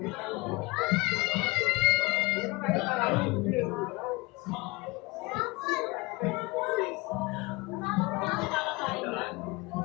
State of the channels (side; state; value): right; quieter; 24.5 dB